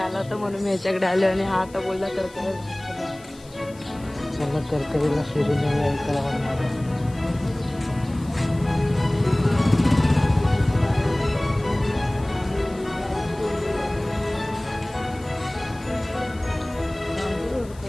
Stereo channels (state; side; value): noise; left; hiss, 24 dB below the sound